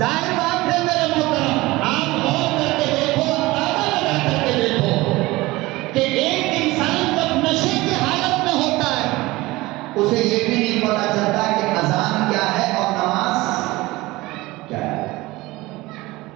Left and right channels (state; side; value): quieter; left; 20.2 dB